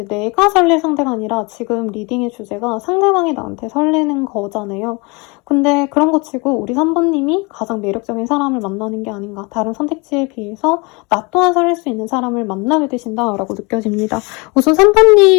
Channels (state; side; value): quieter; right; 28.3 dB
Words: 내가 설렐 상대가 아니라 지금 리딩의 주제가 상대방이 나한테 설레는 거잖아요. 근데 그런 거 치고 우리 3번님이 가장 매력적인 사람을 만나는 게 아닌가. 다른 선택지에 비해서 나 또한 설렐 수 있는 사람을 만나게 되신다라고 느껴집니다. 우선